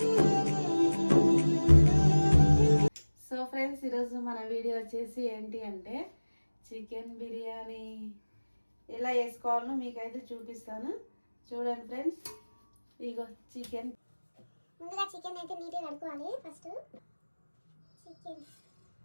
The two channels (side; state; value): both; inverted; correlation -1.00